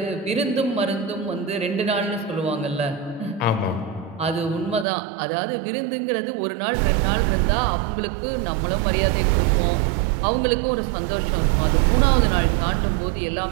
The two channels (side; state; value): left; drops out; at 4.9 s